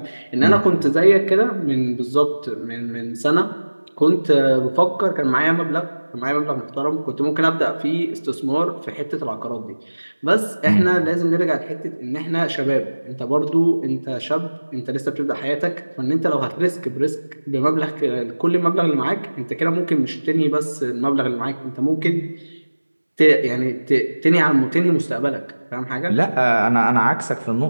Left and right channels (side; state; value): both; inverted; correlation -1.00